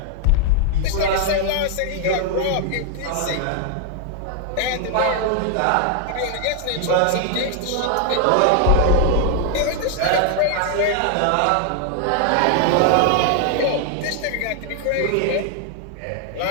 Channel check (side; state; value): both; different; correlation 0.00